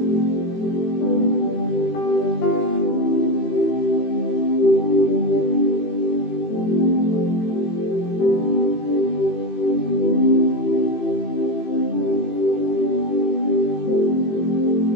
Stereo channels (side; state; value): right; late; 18 ms